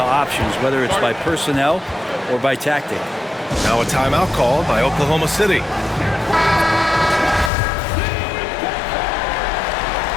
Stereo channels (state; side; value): drops out; right; at 7.5 s